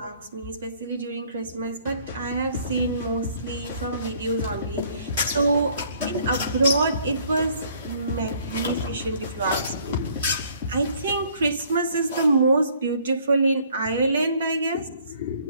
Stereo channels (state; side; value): inverted; both; correlation -0.61